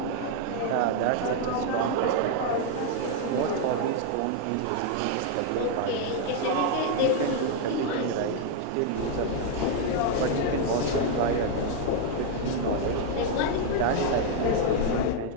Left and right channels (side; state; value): both; different; correlation 0.00